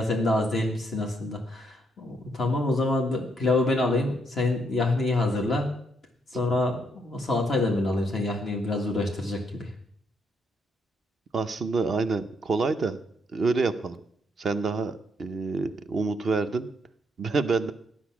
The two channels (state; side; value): normal; both; correlation 0.74